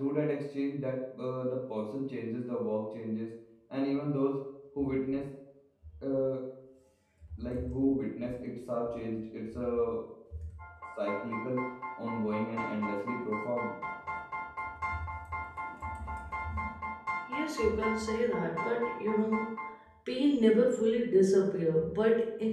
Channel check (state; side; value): identical; both; correlation 1.00